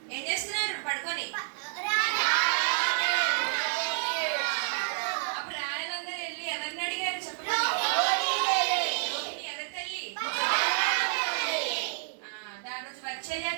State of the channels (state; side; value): silent; left; digital silence